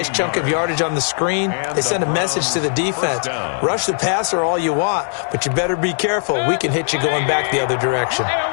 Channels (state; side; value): silent; right; 67 dB below the other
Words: chunk of yardage on the screen, they sent a message to the defense. Rush the passer all you want, but you better be careful. We can hit you going back the other direction.